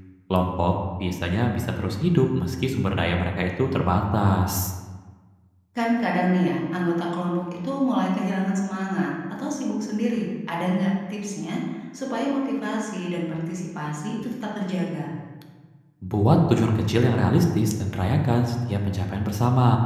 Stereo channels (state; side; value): identical; both; correlation 1.00